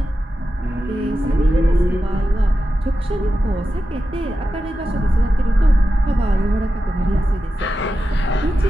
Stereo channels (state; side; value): normal; both; correlation 0.91